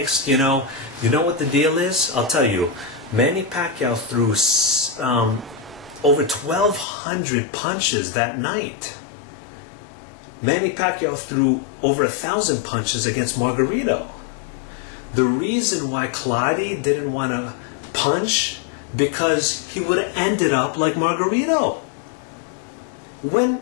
You know what the deal is? I'll tell you. Manny Pacquiao threw over 1,200 punches that night. Manny Pacquiao threw over 1,000 punches against Margarito. The reason why Claudio didn't want to punch, because he would have ended up like Margarito.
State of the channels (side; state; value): right; drops out; at 6.9 s